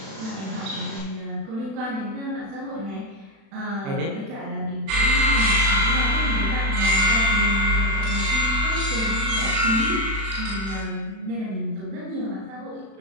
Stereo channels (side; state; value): left; late; 36 ms